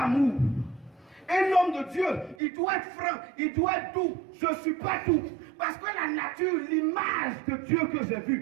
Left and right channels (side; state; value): left; drops out; at 2.4 s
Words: amour. Un homme de Dieu, il doit être franc, il doit être doux. Je ne suis pas doux. Parce que la nature, l'image de Dieu que j'ai